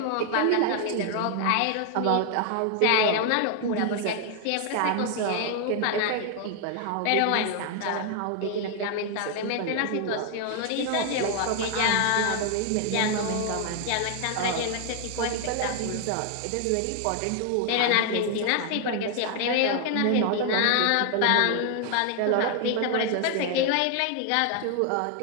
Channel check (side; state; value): both; different; correlation 0.00